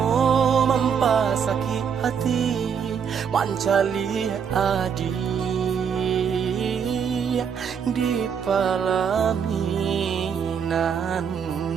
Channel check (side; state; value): left; quieter; 7.1 dB